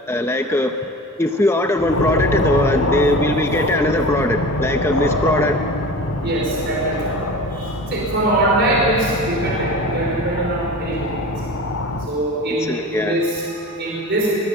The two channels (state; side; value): normal; both; correlation 0.35